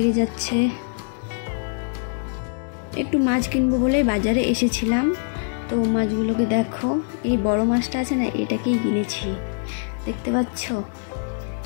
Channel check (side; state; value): right; silent; digital silence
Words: যাচ্ছে। একটু মাছ কিনবো বলে বাজারে এসেছিলাম। তো মাছগুলোকে দেখো, এই বড় মাছটা আছে না, এটাকেই কিনেছি, দেখতে পাচ্ছ।